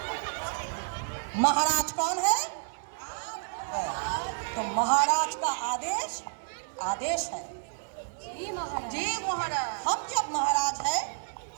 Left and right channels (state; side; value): silent; left; 58 dB below the other